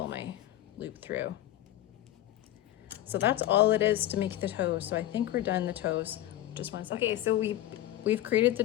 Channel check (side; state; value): right; quieter; 13.8 dB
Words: my loop through. So that's all it is to make the toes. So I think we're done the toes. Just 1 second. Okay, so we've created the